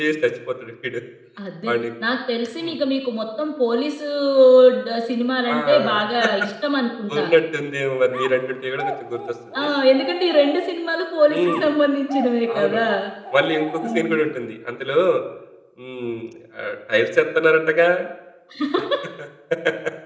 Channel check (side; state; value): both; identical; correlation 1.00